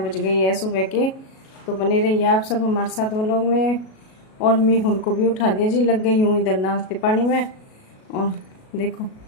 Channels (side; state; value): right; late; 37 ms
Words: गई है सुबह के। तो बने रहिए आप सब हमारे साथ ब्लॉग में। और मीहुल को भी उठा दिया जी, लग गई हूँ इधर नाश्ते पानी में। और देखो